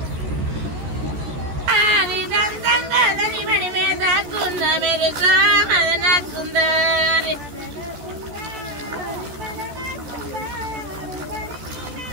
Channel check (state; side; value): late; left; 14 ms